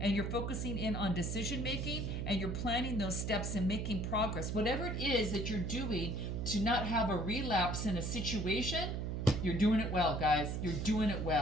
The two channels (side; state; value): right; noise; hum, 2 dB below the sound